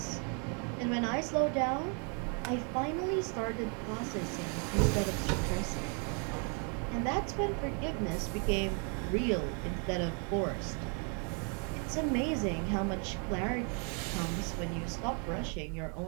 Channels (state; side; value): quieter; left; 38.6 dB